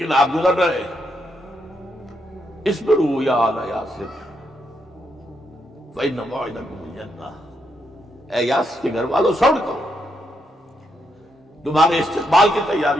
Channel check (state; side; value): normal; both; correlation 0.79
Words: آپ گزر رہے. اصبروا یا آل یاسر فإن موعدکم الجنہ. اے یاسر کے گھر والوں صبر کرو, تمہارے استقبال کی